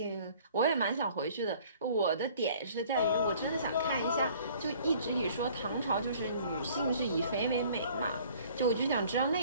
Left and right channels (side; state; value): both; inverted; correlation -0.53